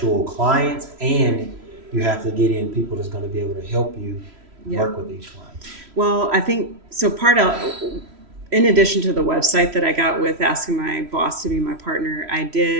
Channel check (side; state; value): left; late; 3.1 ms